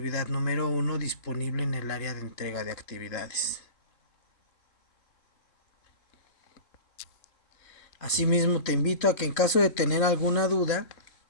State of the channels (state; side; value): late; right; 3.1 ms